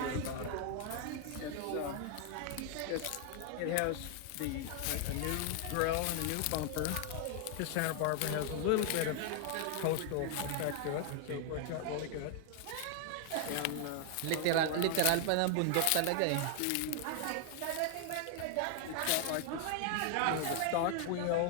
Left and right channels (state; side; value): different; both; correlation 0.00